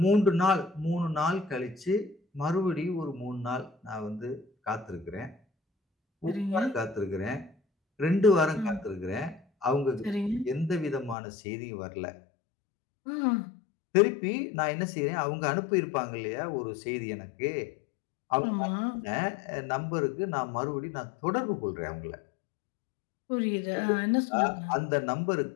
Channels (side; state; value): right; drops out; at 11.2 s